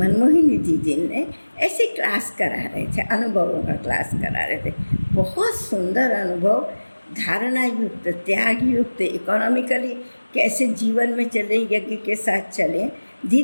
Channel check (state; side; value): inverted; both; correlation -1.00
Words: दीदी ने ऐसी क्लास करा रहे थे, अनुभवों का क्लास करा रहे थे। बहुत सुंदर अनुभव, धारणा युक्त, त्याग युक्त, इकोनॉमिकली कैसे जीवन में चले, यज्ञ के साथ चले।